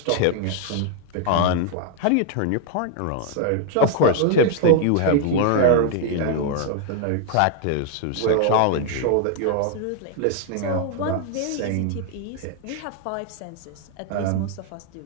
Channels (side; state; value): both; different; correlation 0.00